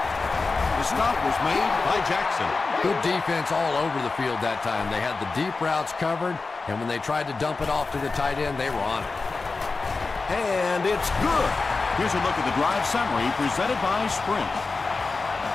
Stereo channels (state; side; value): quieter; right; 4.0 dB